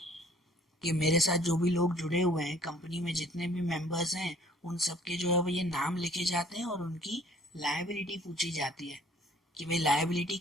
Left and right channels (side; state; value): both; normal; correlation 0.57